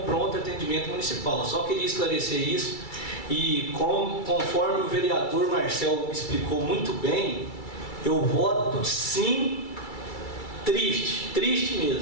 pronto atendimento municipal. Só queria esclarecer isso. E conforme o vereador Marcel explicou muito bem, eu voto sim, triste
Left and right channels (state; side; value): late; right; 2.3 ms